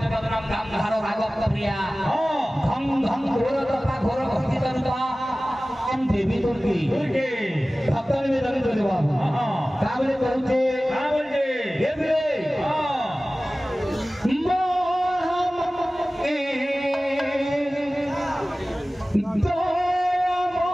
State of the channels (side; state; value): both; normal; correlation 0.97